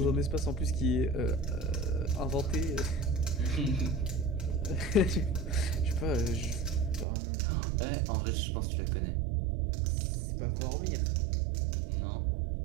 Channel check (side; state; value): left; drops out; at 7.1 s